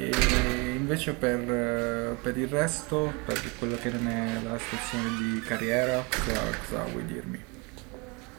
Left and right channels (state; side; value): quieter; left; 29.3 dB